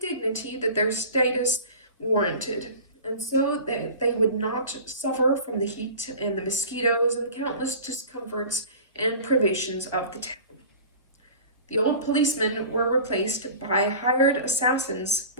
dignity that their status warranted, and so that they would not suffer from the heat and the mosquitoes and the countless discomforts and privations of the town. The old policemen were replaced by hired assassins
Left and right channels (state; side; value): inverted; both; correlation -0.38